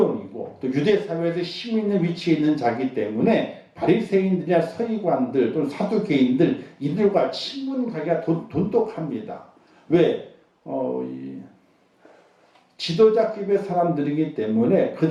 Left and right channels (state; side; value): identical; both; correlation 1.00